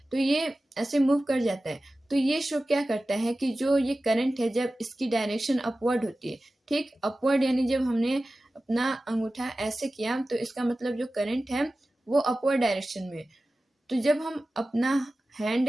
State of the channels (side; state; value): both; normal; correlation 0.96